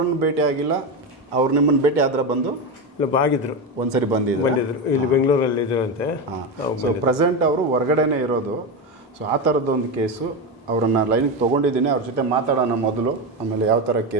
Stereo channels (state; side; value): normal; both; correlation 0.15